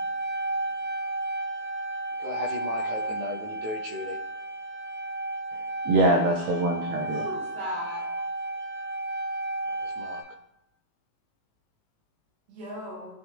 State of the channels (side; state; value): left; late; 18 ms